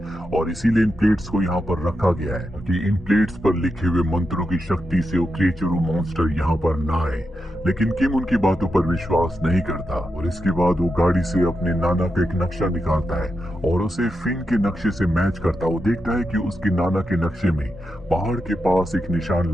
और इसीलिए इन प्लेट्स को यहाँ पर रखा गया है कि इन प्लेट्स पर लिखे हुए मंत्रों की शक्ति से वो क्रिएचर वो मॉन्स्टर यहाँ पर ना आए। लेकिन किम उनकी बातों पर विश्वास नहीं करता और इसके बाद वो गाड़ी से अपने नाना का एक नक्शा निकालता है और उसे फिन के नक्शे से मैच करता। वो देखता है कि उसके नाना के नक्शे में पहाड़ के पास एक निशान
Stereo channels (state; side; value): normal; both; correlation 0.87